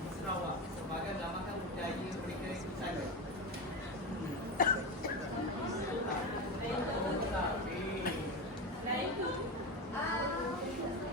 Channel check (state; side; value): normal; both; correlation 0.18